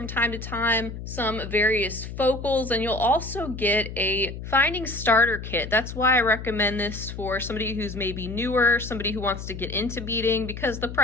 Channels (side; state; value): left; noise; hum, 9 dB below the sound